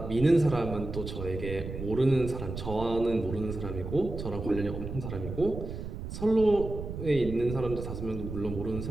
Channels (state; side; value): noise; right; rumble, 7 dB below the sound